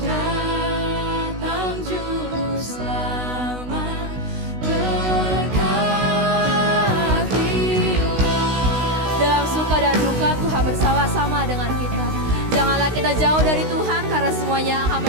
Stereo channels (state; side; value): late; left; 16 ms